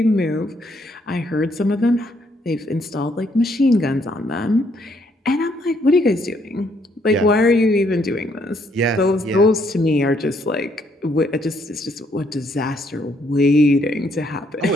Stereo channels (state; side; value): normal; both; correlation 0.71